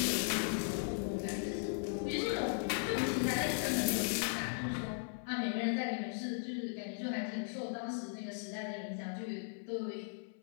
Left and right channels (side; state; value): right; silent; 53 dB below the other